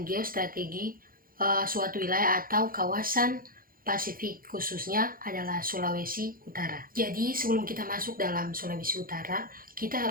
geostrategi suatu wilayah atau kawasan Pasifik, khususnya adalah Sulawesi Utara. Jadi sebelum kita masuk dalam Sulawesi Utara, kita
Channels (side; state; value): left; late; 0.42 ms